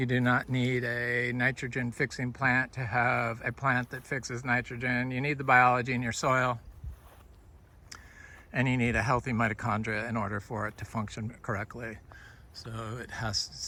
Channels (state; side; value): identical; both; correlation 1.00